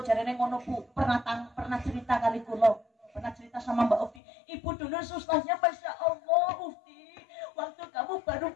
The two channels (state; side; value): drops out; right; at 4.2 s